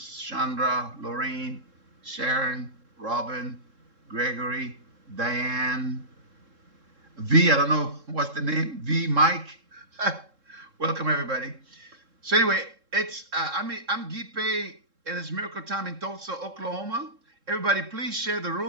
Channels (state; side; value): late; left; 3.7 ms